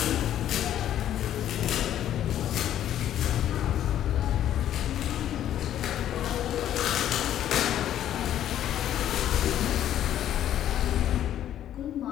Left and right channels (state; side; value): quieter; right; 11.3 dB